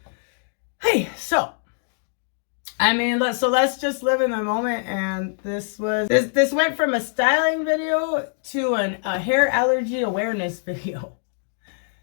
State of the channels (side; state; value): right; silent; digital silence